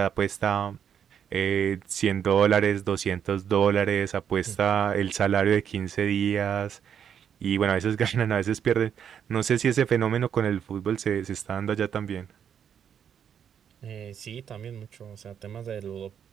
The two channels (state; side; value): quieter; left; 8.4 dB